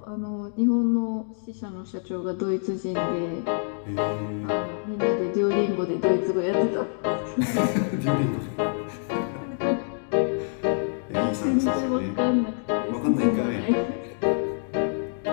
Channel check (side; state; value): right; silent; digital silence